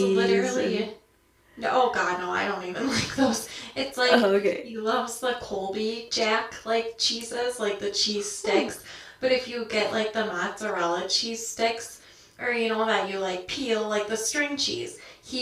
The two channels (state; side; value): identical; both; correlation 1.00